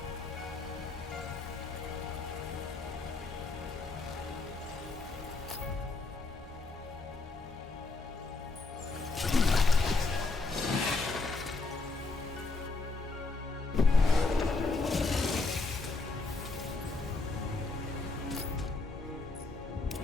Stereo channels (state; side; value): quieter; right; 3.7 dB